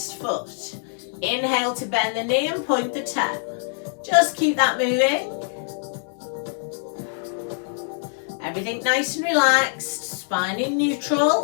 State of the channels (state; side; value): silent; right; 59 dB below the other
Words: foot. Inhale to bend the knee and point the toe. Just keep that moving. Everything nice and relaxed. Spine in